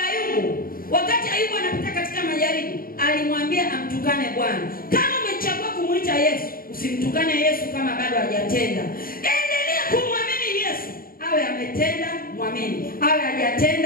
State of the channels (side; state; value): right; late; 0.42 ms